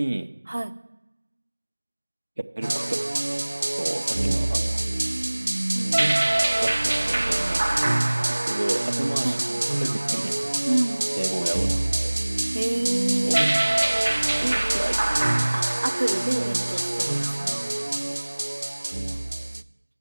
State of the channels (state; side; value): inverted; both; correlation -1.00